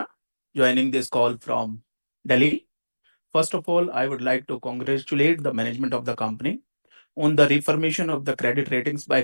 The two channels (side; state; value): both; inverted; correlation -1.00